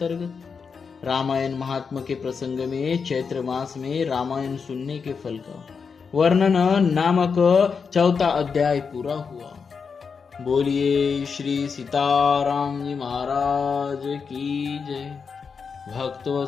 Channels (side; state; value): right; quieter; 5.7 dB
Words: रामायण महात्मा के प्रसंग में चैत्र मास में रामायण सुनने के फल का वर्णन नामक 4था अध्याय पूरा हुआ। बोलिए श्री सीताराम जी महाराज की जय।